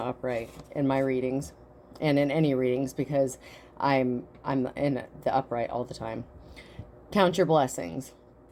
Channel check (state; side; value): identical; both; correlation 1.00